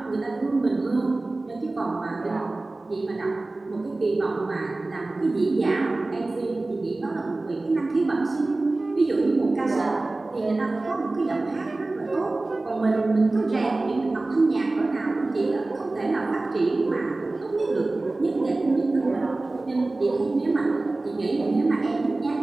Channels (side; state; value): left; quieter; 3.1 dB